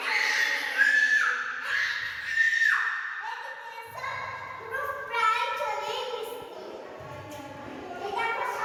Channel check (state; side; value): identical; both; correlation 1.00